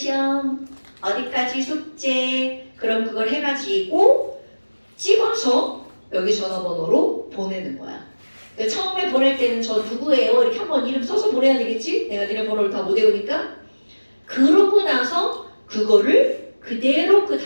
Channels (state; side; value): inverted; both; correlation -1.00